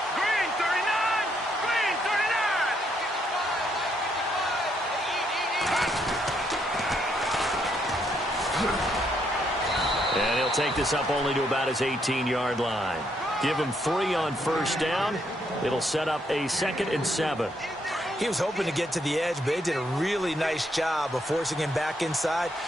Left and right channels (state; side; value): normal; both; correlation 0.74